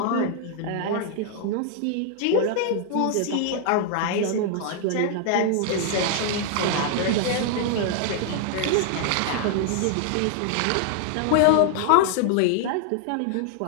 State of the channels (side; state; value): both; different; correlation 0.00